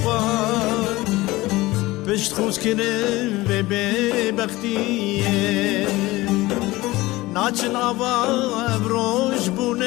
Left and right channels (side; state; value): right; quieter; 19.5 dB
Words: pişt xuzkirin ve bebektiye Naçın ava ebroş bu